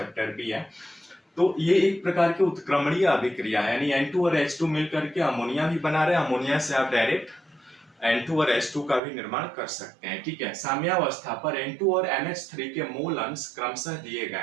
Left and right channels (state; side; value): drops out; left; at 9.0 s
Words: भी है। तो ये एक प्रकार की उत्क्रमणीय अभिक्रिया है, यानी N2 और H2 मिल करके अमोनिया भी बना रहे हैं। अमोनिया से आप डायरेक्ट N2 और H2 का भी निर्माण कर सकते हैं, ठीक है। साम्यावस्था पर N2 और NH3 के मोल अंश क्रमशः दिए गए